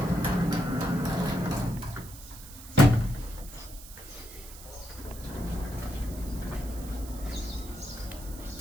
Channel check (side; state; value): right; noise; hiss, 16 dB below the sound